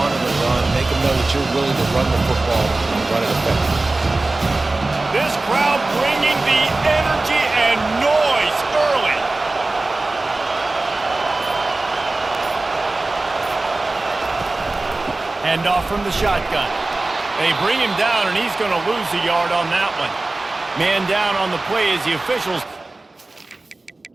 the run. Make them know that you're willing to run the football and run it effectively. This crowd bringing the energy and noise early. Handoff from the shotgun. They bring him down, and he's going to lose a yard on that one. Man down on the play as the officials.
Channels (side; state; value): left; quieter; 3.1 dB